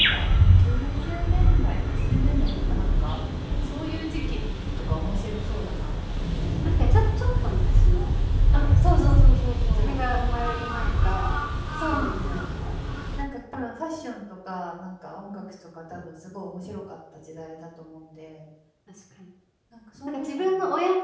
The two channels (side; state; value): both; identical; correlation 1.00